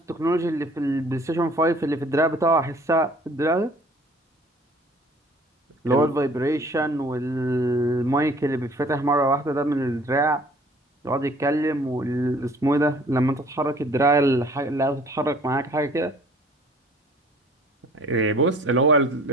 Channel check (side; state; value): both; normal; correlation 0.53